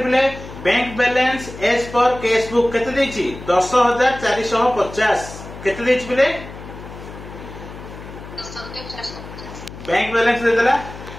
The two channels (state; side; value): noise; left; hum, 14 dB below the sound